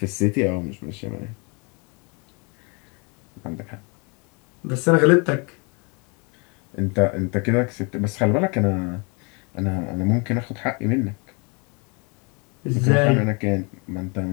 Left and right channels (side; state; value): right; quieter; 32.0 dB